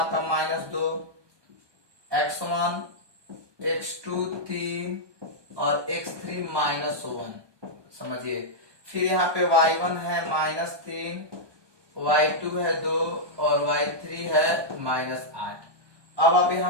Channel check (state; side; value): late; left; 1.2 ms